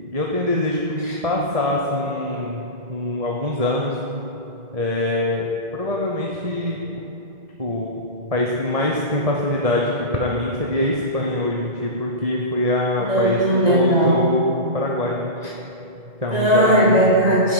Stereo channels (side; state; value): left; late; 2.0 ms